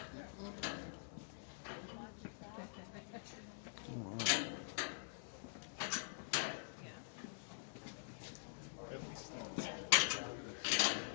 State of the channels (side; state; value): right; silent; digital silence